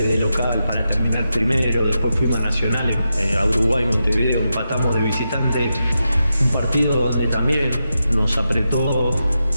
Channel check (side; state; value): both; inverted; correlation -0.88